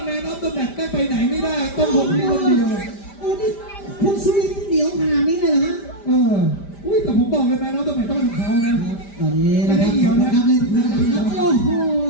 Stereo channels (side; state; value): right; late; 5.0 ms